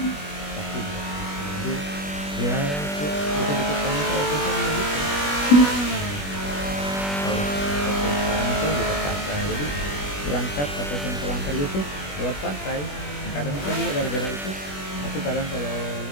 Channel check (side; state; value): right; late; 21 ms